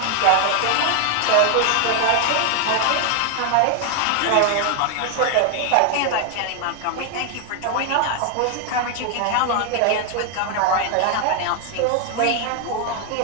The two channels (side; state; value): both; different; correlation 0.01